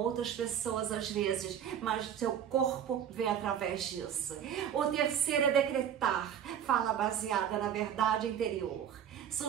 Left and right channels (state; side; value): quieter; left; 9.1 dB